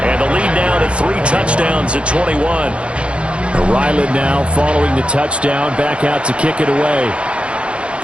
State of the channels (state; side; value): late; left; 0.058 ms